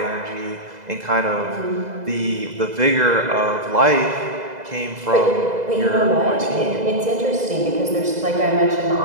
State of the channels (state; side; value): late; left; 2.0 ms